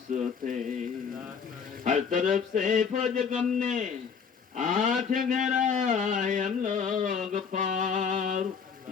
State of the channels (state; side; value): quieter; right; 6.3 dB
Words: हर तरफ से फौज गम ने आंख गहराए हम लोग पार